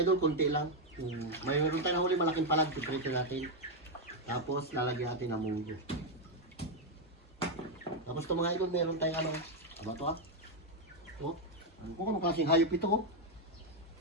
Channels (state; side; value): normal; both; correlation 0.02